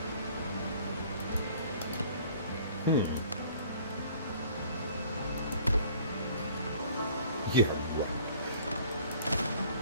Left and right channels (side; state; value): both; inverted; correlation -0.53